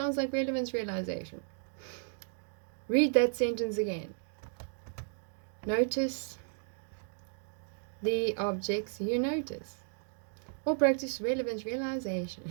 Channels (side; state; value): left; silent; digital silence